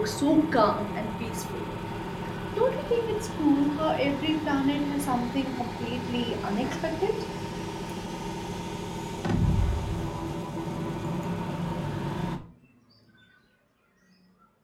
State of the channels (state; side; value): identical; both; correlation 1.00